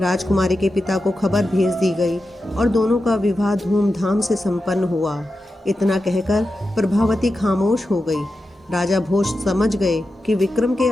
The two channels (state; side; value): normal; both; correlation 0.91